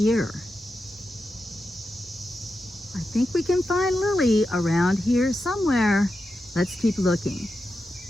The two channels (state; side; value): normal; both; correlation 0.89